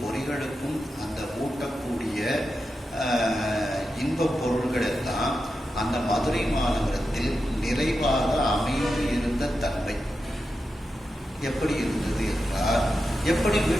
பொறிகளுக்கும் அந்த ஊட்டக்கூடிய இன்பப் பொருள்கள் எல்லாம் அந்த மதுரை மாநகரத்தில் நிறைவாக அமைந்து இருந்த தன்மை எப்படி இருந்தது என்றால், எப்படி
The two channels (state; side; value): normal; both; correlation 0.89